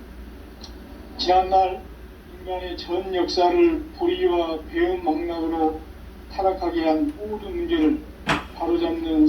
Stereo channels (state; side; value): identical; both; correlation 1.00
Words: 지난날 인간의 전 역사를 불의와 배움 망락으로 타락하게 한 모든 문제를 바로잡는